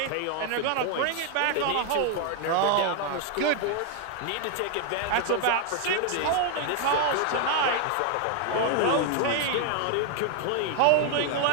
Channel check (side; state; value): both; different; correlation 0.00